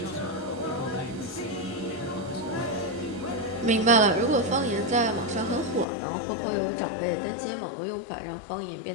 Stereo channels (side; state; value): right; drops out; at 5.9 s